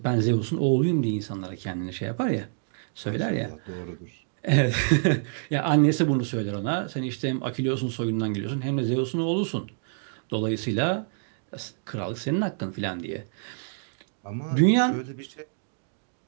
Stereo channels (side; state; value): left; silent; digital silence